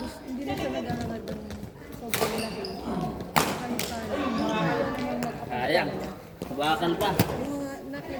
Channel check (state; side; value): identical; both; correlation 1.00